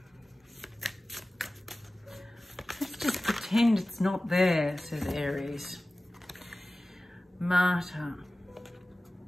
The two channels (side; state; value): both; normal; correlation 0.97